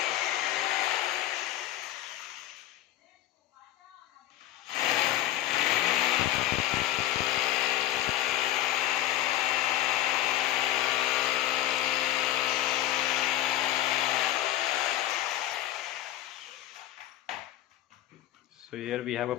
So here we have a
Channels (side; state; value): right; quieter; 13.6 dB